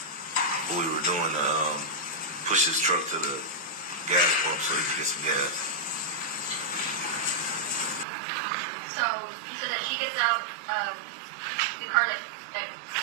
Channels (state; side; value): drops out; left; at 8.1 s